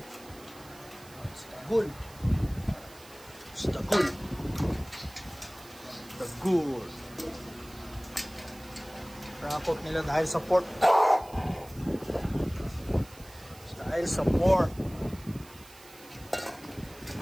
Si Dagul. the good. Rakot nila dahil sa pork. Dahil sa pork.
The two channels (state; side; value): noise; right; hiss, 21 dB below the sound